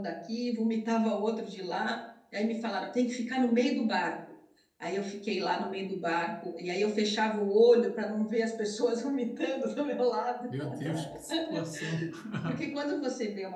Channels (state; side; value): identical; both; correlation 1.00